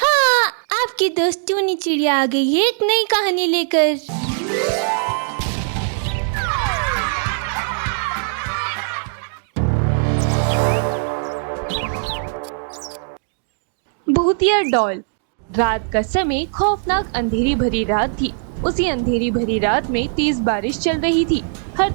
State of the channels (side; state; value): left; silent; 66 dB below the other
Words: आपकी दोस्त टूनी चिड़िया आ गई है एक नई कहानी लेकर। भूतिया डॉल। रात का समय खौफनाक अंधेरी भरी रात थी। उसी अंधेरी भरी रात में तेज बारिश चल रही थी। हर